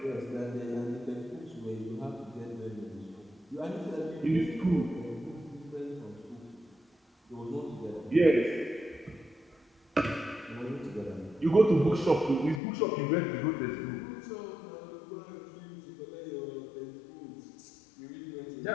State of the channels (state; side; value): drops out; right; at 12.6 s